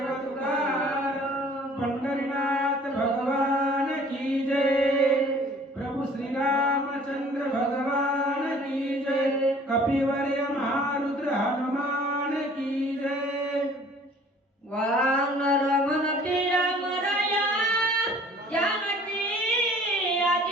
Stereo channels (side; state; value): both; normal; correlation 0.52